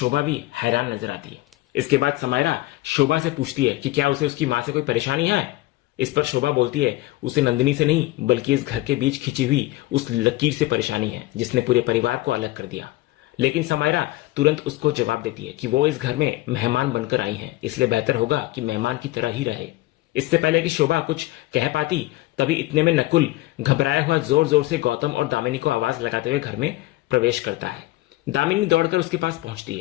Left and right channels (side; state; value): right; quieter; 18.3 dB